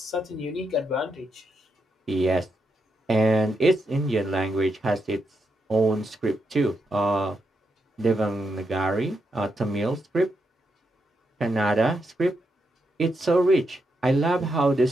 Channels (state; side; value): normal; both; correlation 0.83